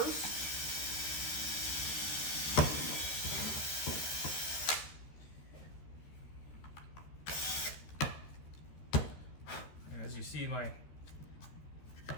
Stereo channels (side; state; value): right; late; 13 ms